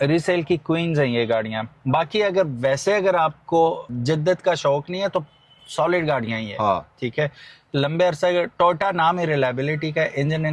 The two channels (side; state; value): both; identical; correlation 1.00